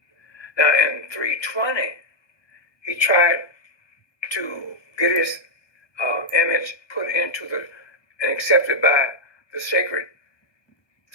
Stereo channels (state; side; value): late; right; 1.2 ms